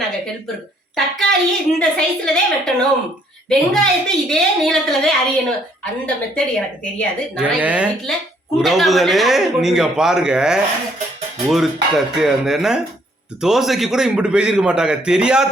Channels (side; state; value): both; normal; correlation 0.66